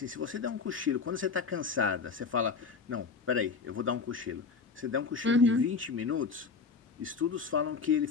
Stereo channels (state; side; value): quieter; right; 5.1 dB